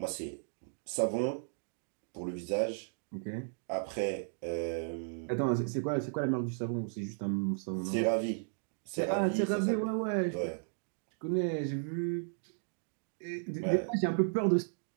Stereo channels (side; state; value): left; silent; digital silence